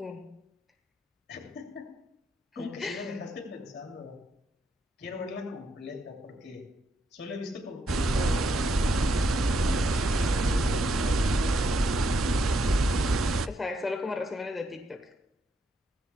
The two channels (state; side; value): normal; both; correlation 0.77